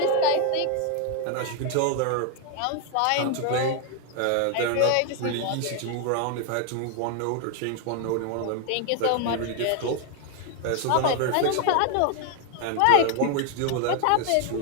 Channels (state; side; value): different; both; correlation 0.00